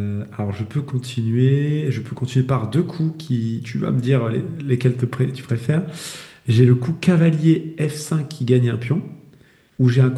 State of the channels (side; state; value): both; identical; correlation 1.00